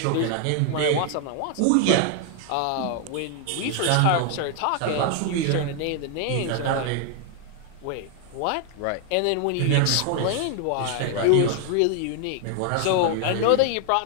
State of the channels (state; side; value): different; both; correlation 0.00